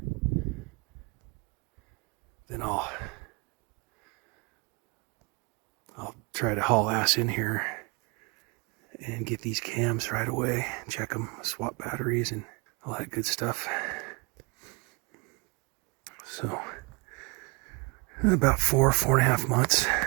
then I'll try to haul ass in here and get these cams right away, check them, swap batteries, and all that good stuff. So, about 4.5 months.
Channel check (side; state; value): left; quieter; 29.7 dB